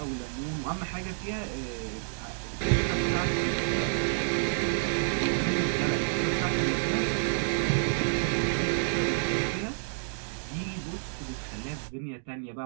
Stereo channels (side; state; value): left; silent; digital silence